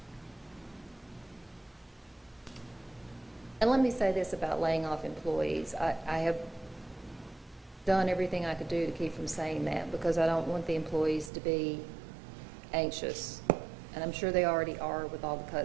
And let me say this about laying off employees. I have done everything I could do to keep from saying that because I don't want the employees to be anxious. And I'm sure they already are with all the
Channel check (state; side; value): drops out; left; at 11.3 s